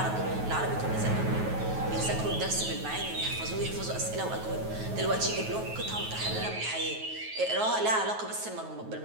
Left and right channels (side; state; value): left; late; 9.3 ms